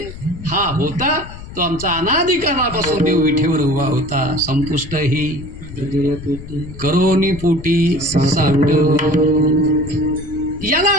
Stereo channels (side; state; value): left; noise; rumble, 13 dB below the sound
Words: हा होता तो आमचा अनाधिकारापासून देव विठेवर उभा होता. संपुष्ट ही करोनी पोटी साठ. याला